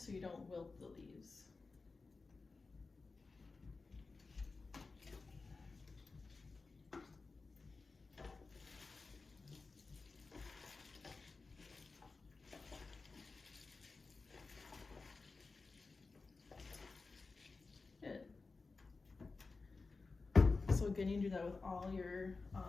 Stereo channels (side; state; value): right; quieter; 4.0 dB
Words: you don't wilt the leaves. So again, you do that with all your